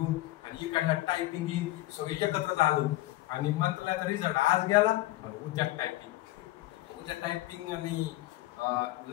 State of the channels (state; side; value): quieter; right; 17.3 dB